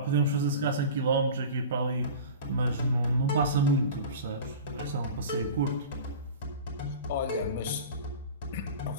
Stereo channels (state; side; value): inverted; both; correlation -0.35